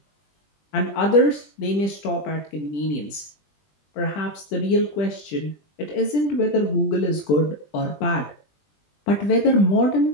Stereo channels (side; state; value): right; late; 20 ms